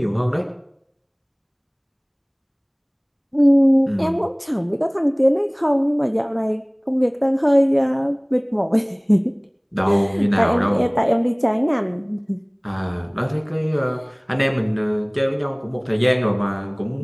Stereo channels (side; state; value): both; identical; correlation 1.00